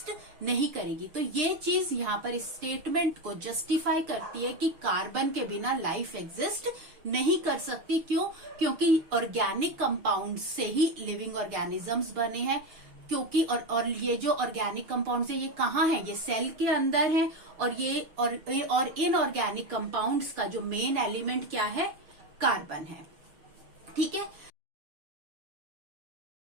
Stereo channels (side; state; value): left; late; 6.6 ms